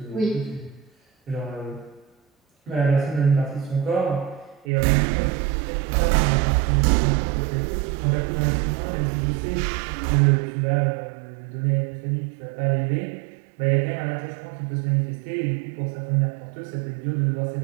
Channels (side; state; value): left; drops out; at 4.7 s